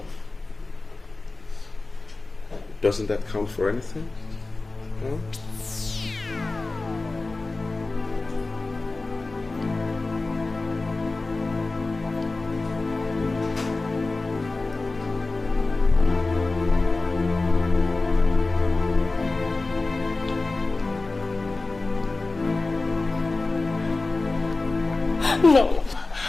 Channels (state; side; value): quieter; right; 3.4 dB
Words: Doesn't that count for anything? Huh? No.